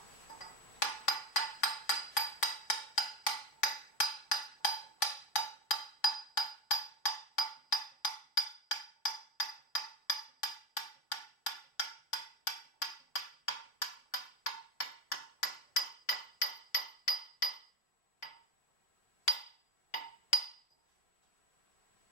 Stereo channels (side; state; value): right; late; 3.4 ms